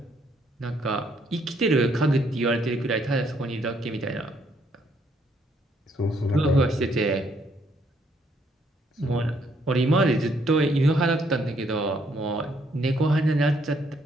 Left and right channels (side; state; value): both; normal; correlation 0.70